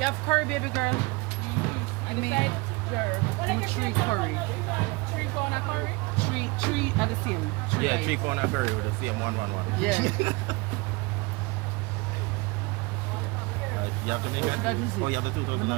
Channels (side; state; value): left; quieter; 25.9 dB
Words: have curry, baby girl? I mean, jerk. 3 curry. 3 pound of curry? 3 are the same. 3 yeah, 3 pound of curry with the same 1. Yeah. You have to make it. That is it. Oh, you have to do it.